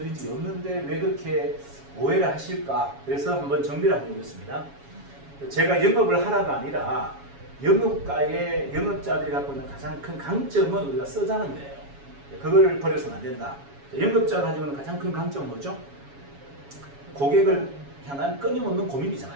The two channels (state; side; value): late; left; 7.2 ms